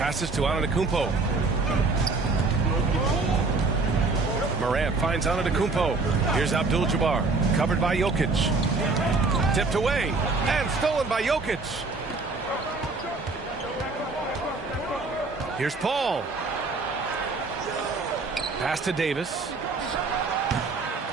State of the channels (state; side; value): quieter; left; 3.8 dB